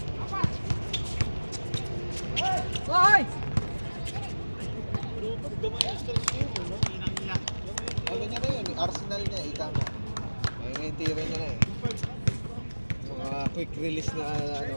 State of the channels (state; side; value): inverted; both; correlation -1.00